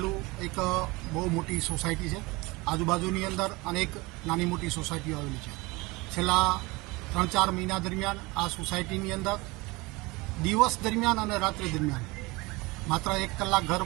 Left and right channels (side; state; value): left; quieter; 23.7 dB